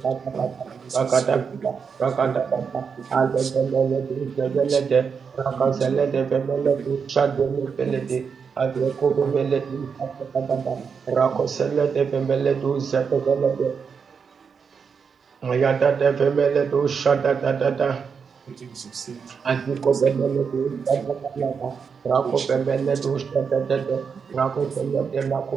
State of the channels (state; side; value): quieter; left; 6.1 dB